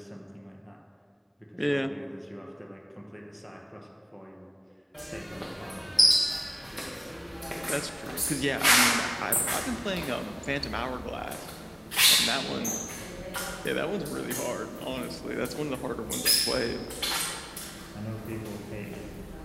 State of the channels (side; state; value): both; identical; correlation 1.00